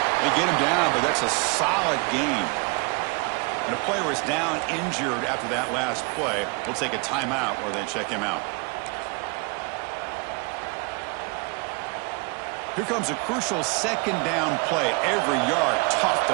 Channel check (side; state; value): left; quieter; 30.5 dB